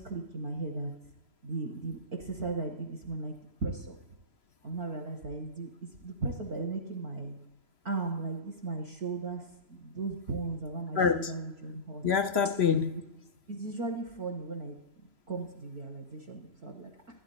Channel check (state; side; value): late; left; 3.0 ms